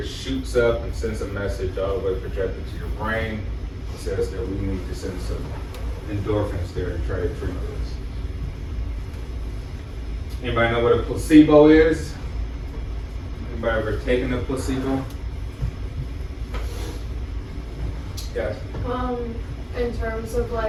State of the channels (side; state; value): both; identical; correlation 1.00